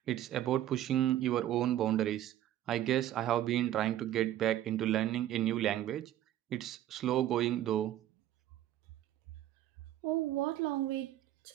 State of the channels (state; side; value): quieter; left; 12.6 dB